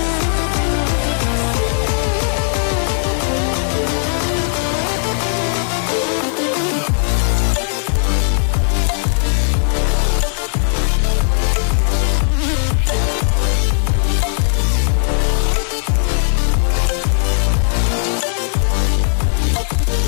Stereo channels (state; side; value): silent; right; digital silence